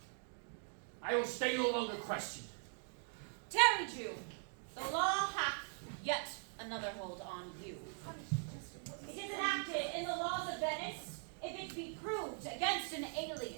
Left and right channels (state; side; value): silent; left; 50 dB below the other